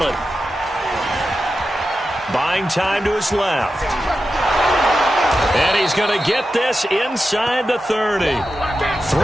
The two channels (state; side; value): normal; both; correlation 0.91